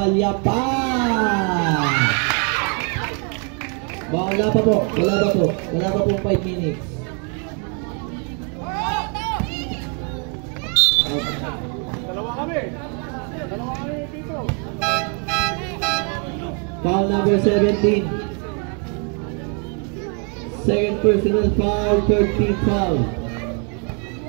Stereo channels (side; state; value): left; quieter; 38.3 dB